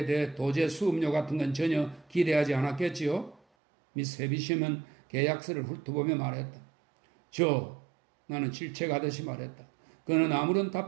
대해 도제 수업료 같은 건 전혀 기대하지 않았겠지요? 미스 해비시엄은 계약서를 훑어보며 말했다. 나는 질책하듯이 말했다. 그는 아무런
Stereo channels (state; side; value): drops out; left; at 3.4 s